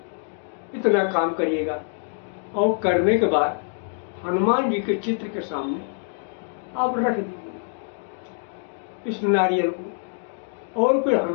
इतना काम करिएगा। और करने के बाद हनुमान जी के चित्र के सामने आप रख दीजिए इस नारियल को। और फिर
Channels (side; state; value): right; silent; 62 dB below the other